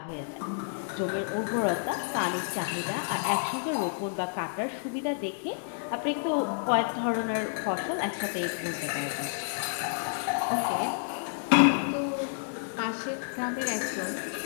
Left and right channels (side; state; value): right; silent; 58 dB below the other